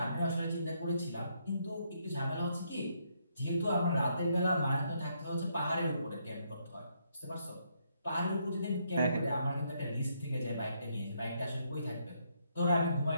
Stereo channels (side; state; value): both; inverted; correlation -0.74